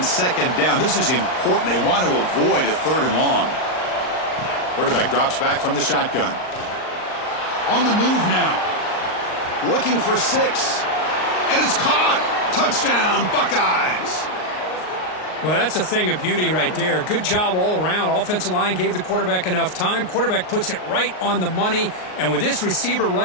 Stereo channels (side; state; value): right; late; 38 ms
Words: down. This is important. They want to avoid a 3rd and long. Quarterback drops back from the shotgun. On the move now. Looking for 6. And it's caught. Touchdown, Buckeyes. Well, that's a thing of beauty right there. Good job all around. Offensive line gave the quarterback enough time. Quarterback puts it right on the money. And with this receiver